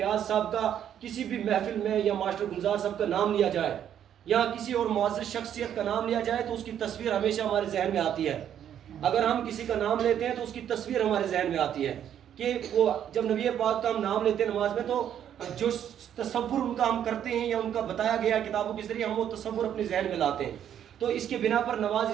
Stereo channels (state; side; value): quieter; left; 9.8 dB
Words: صاحب کا کسی بھی محفل میں یا ماسٹر گلزار صاحب کا نام لیا جائے یا کسی اور معزز شخصیت کا نام لیا جائے تو اس کی تصویر ہمیشہ ہمارے ذہن میں آتی ہے۔ اگر ہم کسی کا نام لیتے ہیں تو اس کی تصویر ہمارے ذہن میں آتی ہے کہ وہ جب نبی پاک کا ہم نام لیتے ہیں نماز میں تو جو تصور ان کا ہم کرتے ہیں یا ان کا بتایا گیا کتابوں کے ذریعے ہم وہ تصور اپنے ذہن میں لاتے ہیں، تو اس کے بنا پر نماز